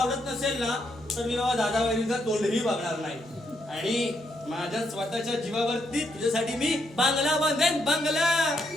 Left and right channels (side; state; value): both; normal; correlation 0.77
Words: नसेल ना तर मी बाबा दादा वहिनीचा तोंडही बघणार नाही. आणि माझ्या स्वतःच्या जीवावरती तुझ्यासाठी मी बांगला बांधेन बांगला.